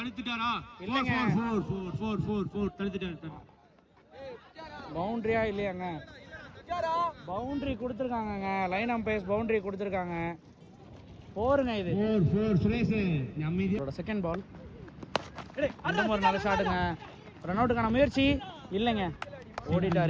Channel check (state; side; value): identical; both; correlation 1.00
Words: இல்லைங்க, 4 தடுத்துட்டாரு. பவுண்டரியா இல்லையாங்க? பவுண்டரி கொடுத்துருக்காங்க. லைன் அம்பையர்ஸ் பவுண்டரி கொடுத்துருக்காங்க. போருங்க இது 4 சுரேஷ். நம்மளோட செகண்ட் பால் ஒரு நல்ல ஷாட்டுங்க. ரன் அவுட்டுக்கான முயற்சி இல்லைங்க,